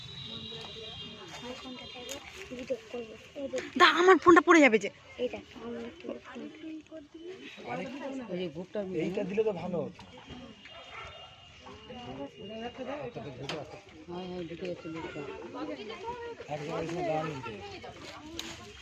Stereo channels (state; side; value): identical; both; correlation 1.00